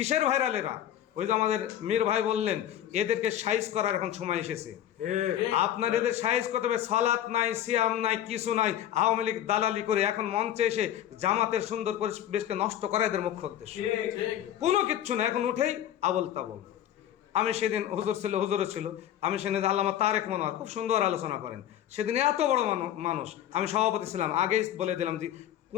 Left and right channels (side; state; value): right; quieter; 11.4 dB